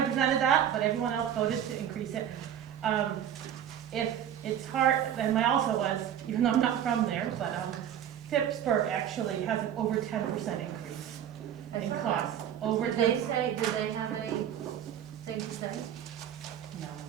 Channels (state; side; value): quieter; left; 9.9 dB